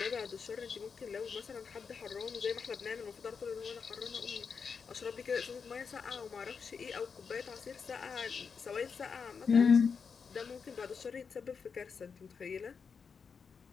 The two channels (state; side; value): quieter; right; 5.8 dB